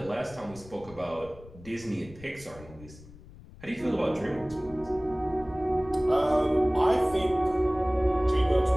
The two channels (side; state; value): left; noise; rumble, 20 dB below the sound